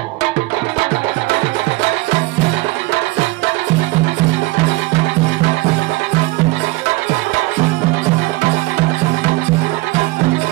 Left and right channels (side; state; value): left; quieter; 21.0 dB